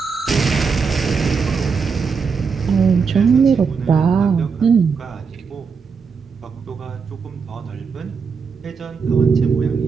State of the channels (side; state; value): left; quieter; 5.6 dB